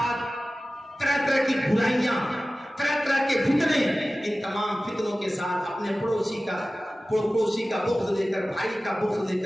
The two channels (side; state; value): both; normal; correlation 0.96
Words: طرح طرح کی برائیاں، طرح طرح کے فتنے، ان تمام فتنوں کے ساتھ اپنے پڑوسی کا بغض لے کر، بھائی کا بغض لے